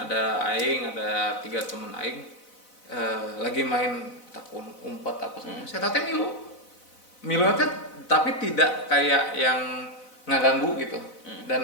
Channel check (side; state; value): right; late; 4.0 ms